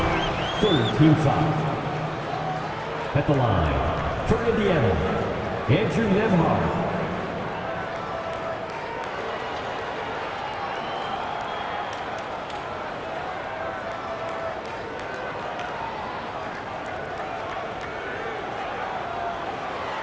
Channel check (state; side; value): identical; both; correlation 1.00